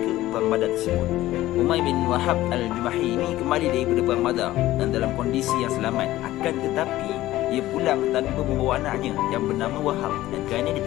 perang Badar tersebut. Umayr bin Wahab al-Jumahi ini kembali daripada perang Badar dan dalam kondisi yang selamat, akan tetapi ia pulang tanpa membawa anaknya yang bernama Wahab dan kerana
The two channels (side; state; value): right; quieter; 15.7 dB